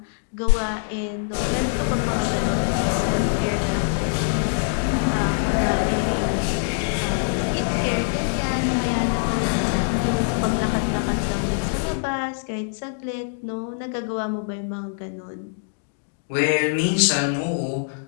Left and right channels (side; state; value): right; silent; digital silence